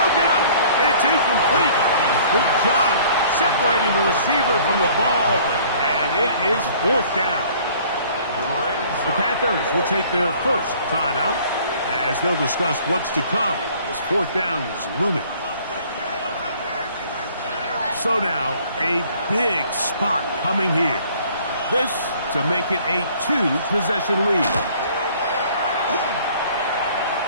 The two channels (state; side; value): inverted; both; correlation -0.54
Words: up. It's incomplete. Good job separating the receiver from the ball, and it is fourth down. The Panthers will take their first timeout as they'll discuss what's to come as fourth down is looming. So now, a big spot coming here. This to make it a 2-possession lead.